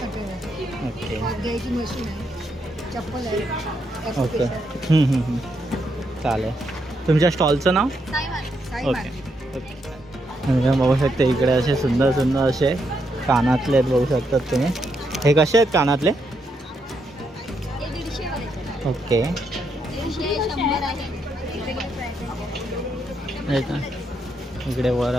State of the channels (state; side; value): normal; both; correlation 0.79